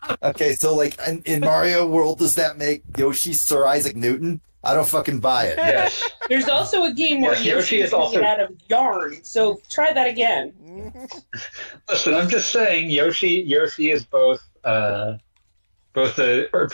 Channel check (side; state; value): both; inverted; correlation -1.00